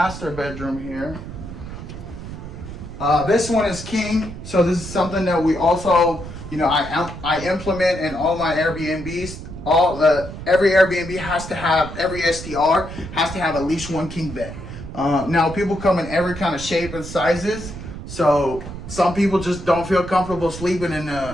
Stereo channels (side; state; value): right; noise; rumble, 11 dB below the sound